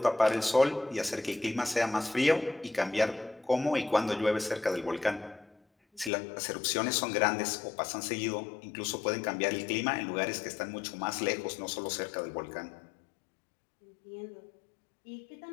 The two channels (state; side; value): drops out; right; at 6.1 s